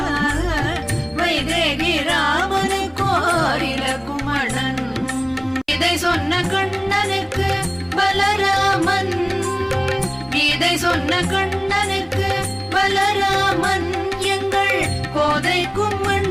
வைதேகி ராமனுக்கோரில குமணன் இதை சொன்ன கண்ணனுக்கு பலராமன் இதை சொன்ன கண்ணனுக்கு பலராமன் எங்கள் கோதைக்கும்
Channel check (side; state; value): both; identical; correlation 1.00